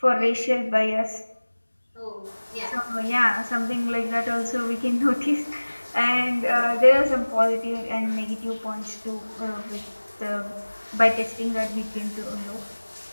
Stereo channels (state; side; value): inverted; both; correlation -1.00